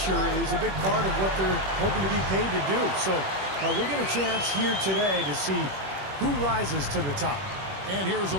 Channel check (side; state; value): left; late; 21 ms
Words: is a big part of what they're hoping to be paid to do. So we'll get a chance here today to see who rises to the top. And here's a